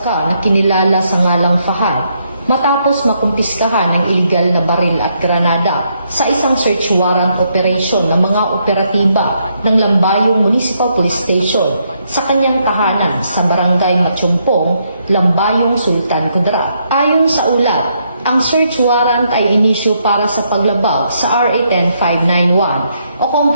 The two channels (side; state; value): both; inverted; correlation -0.76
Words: na kinilala sa ngalang Fahad matapos makumpiskahan ng iligal na baril at granada sa isang search warrant operation ng mga operatiba ng Lambayong Municipal Police Station sa kanyang tahanan sa Barangay Matsumpong, Lambayong Sultan Kudarat. Ayon sa ulat, ang search warrant ay inisyu para sa paglabag sa RA 10591 o